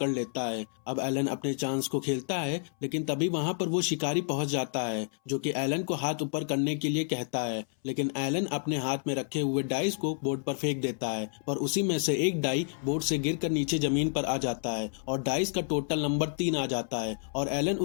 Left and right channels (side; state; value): right; silent; 58 dB below the other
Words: लेता है। अब एलन अपने चांस को खेलता है, लेकिन तभी वहां पर वो शिकारी पहुंच जाता है, जो कि एलन को हाथ ऊपर करने के लिए कहता है। लेकिन एलन अपने हाथ में रखे हुए डाइस को बोर्ड पर फेंक देता है, पर उसी में से एक डाई बोर्ड से गिरकर नीचे जमीन पर आ जाता है, और डाइस का टोटल नंबर 3 आ जाता है, और एलन